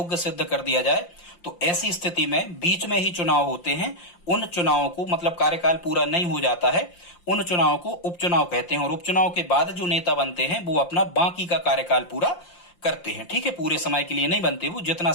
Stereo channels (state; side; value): late; right; 5.7 ms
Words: सिद्ध कर दिया जाए, तो ऐसी स्थिति में बीच में ही चुनाव होते हैं। उन चुनावों को, मतलब कार्यकाल पूरा नहीं हो जाता है, उन चुनाव को उपचुनाव कहते हैं। और उपचुनाव के बाद जो नेता बनते हैं वो अपना बाकी का कार्यकाल पूरा करते हैं। ठीक है, पूरे समय के लिए नहीं बनते, वो जितना